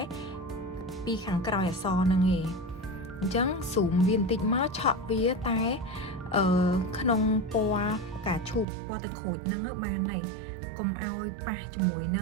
ពីខាងក្រោយអក្សរហ្នឹងឯងអញ្ចឹង zoom វាបន្តិចមកឆក់វាតែក្នុងពណ៌ផ្កាឈូកពណ៌ទឹកក្រូចហ្នឹងបានហើយកុំឲ្យប៉ះជាមួយន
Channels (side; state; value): left; drops out; at 8.7 s